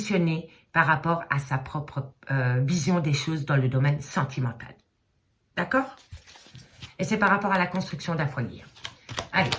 par rapport à sa propre vision des choses dans le domaine sentimental. D'accord? Et c'est par rapport à la construction d'un foyer. Allez,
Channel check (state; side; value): identical; both; correlation 1.00